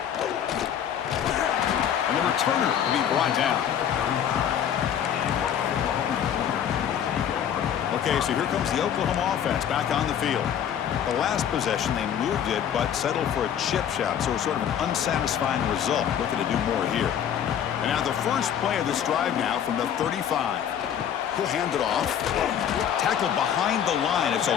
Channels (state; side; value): quieter; right; 9.2 dB